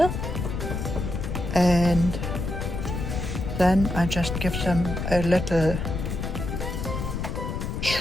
and then I just give them a little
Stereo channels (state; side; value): noise; left; rumble, 3 dB below the sound